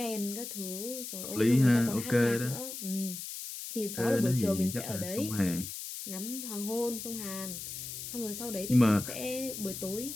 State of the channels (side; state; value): left; noise; hiss, 8 dB below the sound